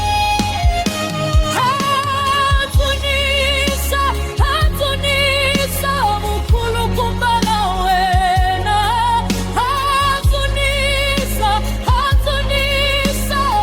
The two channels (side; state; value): both; identical; correlation 1.00